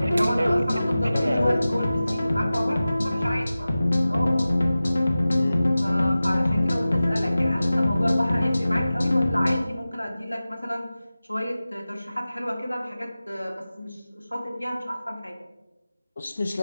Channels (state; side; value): inverted; both; correlation -0.96